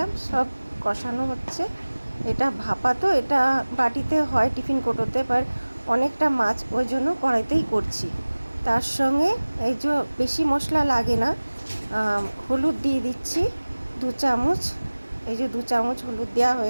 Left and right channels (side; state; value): both; inverted; correlation -1.00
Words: সব কষানো হচ্ছে। এটা ভাপা, তো এটা বাটিতে হয়, টিফিন কোটোতে, বাট অনেকটা মাছ ওই জন্য কড়াইতেই করছি। তার সঙ্গে এই যে বেশি মশলা লাগে না, হলুদ দিয়ে দিচ্ছি 2 চামচ। এই যে 2 চামচ হলুদ দেওয়া